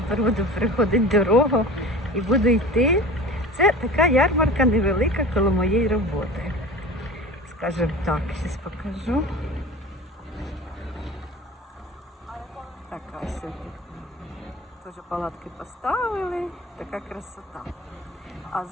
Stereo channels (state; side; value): normal; both; correlation 0.36